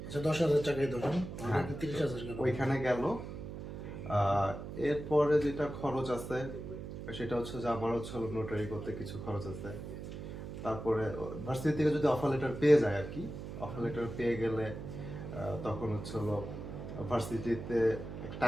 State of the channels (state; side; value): noise; right; hum, 8 dB below the sound